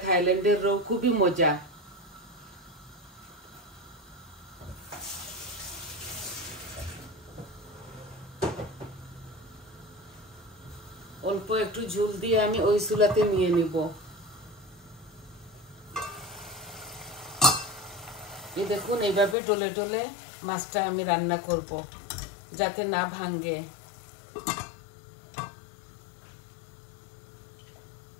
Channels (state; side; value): drops out; right; at 19.4 s